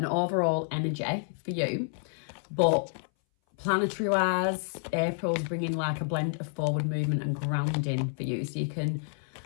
energy for you, but planetary wise, April's bringing like a blend of forward movement and grounding for you, so you can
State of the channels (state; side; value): silent; right; 58 dB below the other